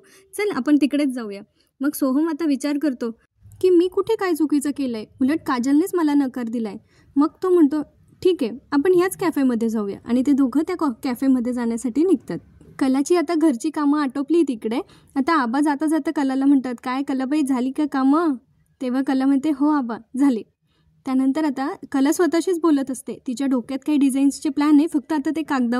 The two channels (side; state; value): both; identical; correlation 1.00